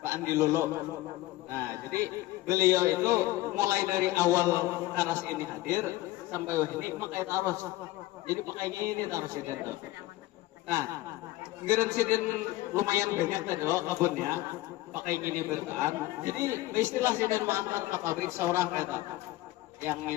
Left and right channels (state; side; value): quieter; right; 17.2 dB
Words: Pak Andi Lolo. Nah, jadi beliau itu mulai dari awal Karas ini hadir sampai ini pakai terus. Jadi pakai ini terus ini. Nah, geren sidin lumayan banyak tadi loh kebunnya, pakai gini bertahan. Jadi istilah sidin mengantar ke pabrik seorang kata yang